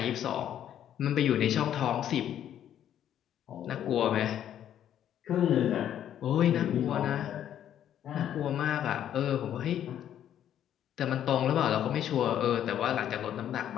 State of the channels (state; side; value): quieter; right; 10.5 dB